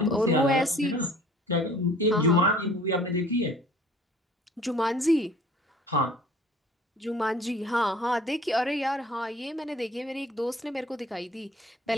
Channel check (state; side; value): normal; both; correlation 0.50